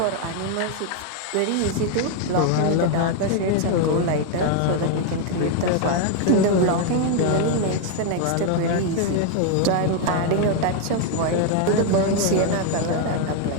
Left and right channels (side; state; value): both; different; correlation 0.01